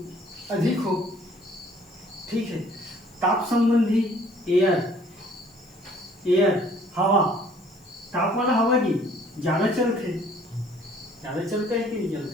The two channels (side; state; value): left; noise; hiss, 30 dB below the sound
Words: हो। ठीक है, ताप संबंधी एयर हवा, ताप वाला हवा की ज़्यादा चलता है कि नहीं चलता